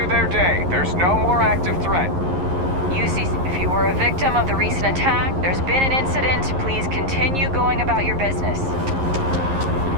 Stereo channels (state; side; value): late; left; 11 ms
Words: their day. There's no more active threat. UC, if you were a victim of the recent attack, there's been an incident. Please continue going about your business.